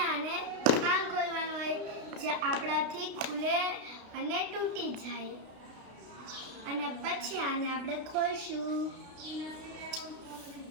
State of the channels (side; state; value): left; late; 32 ms